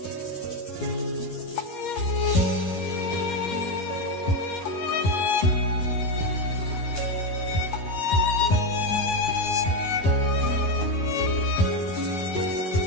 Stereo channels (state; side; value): late; right; 11 ms